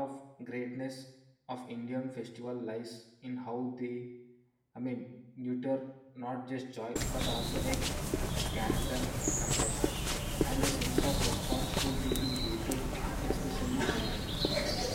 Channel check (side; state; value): both; identical; correlation 1.00